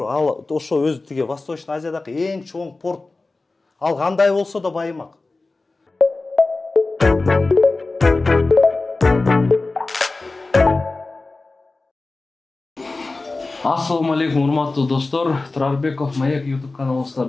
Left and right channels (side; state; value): right; quieter; 3.4 dB